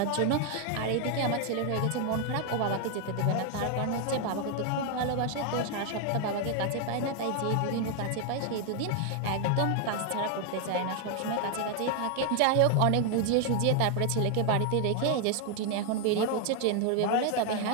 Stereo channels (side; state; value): both; different; correlation 0.00